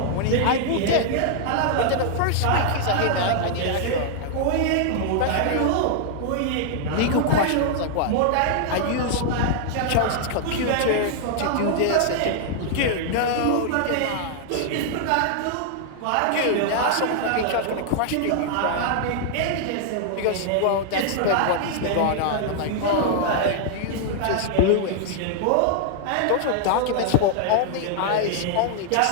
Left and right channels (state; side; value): different; both; correlation -0.01